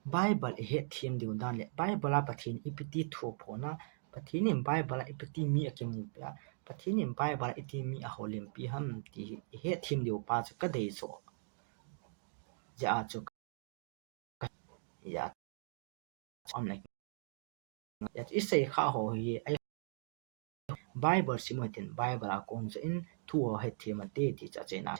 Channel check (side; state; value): left; silent; digital silence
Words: bible he thim diu dan le bible a pathin ipti thu pho na pathin in bible ipti mi akim mu pa pathin in bible iti mi a holim pi ham ti he thim diu pa ka dei so ja chu ya on like that is say kha ho hi ai bible simatin bible a kon in thu he thema te ti cha che na